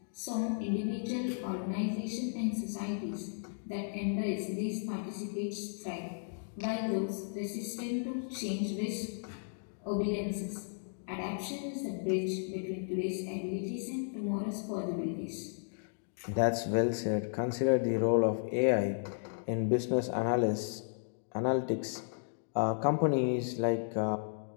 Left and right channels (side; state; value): right; silent; digital silence